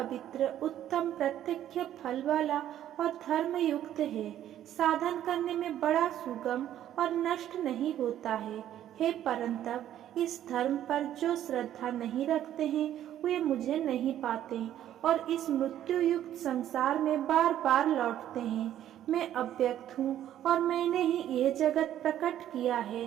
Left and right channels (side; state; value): left; quieter; 11.6 dB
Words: उत्तम प्रत्यक्ष फल वाला और धर्म युक्त है। साधन करने में बड़ा सुगम और नष्ट नहीं होता है। हे परंतप, इस धर्म पर जो श्रद्धा नहीं रखते हैं वे मुझे नहीं पाते और इस मृत्यु युक्त संसार में बार बार लौटते हैं। मैं अव्यक्त हूँ और मैंने ही यह जगत प्रकट किया है।